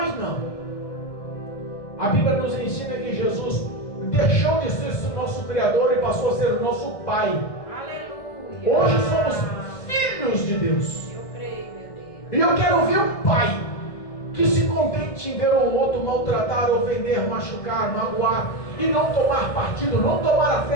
não. A Bíblia nos ensina que Jesus deixou de ser o nosso Criador e passou a ser o nosso Pai. Aleluia. Hoje somos filhos de Deus. Eu creio, meu Deus. E eu quero ver um pai que se contente em ver o outro maltratar, ofender, machucar, magoar e não tomar partido, não tomar a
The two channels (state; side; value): late; right; 1.6 ms